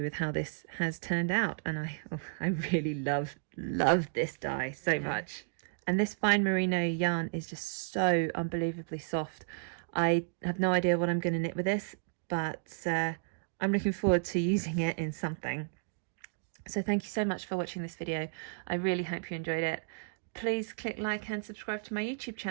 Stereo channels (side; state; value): left; silent; digital silence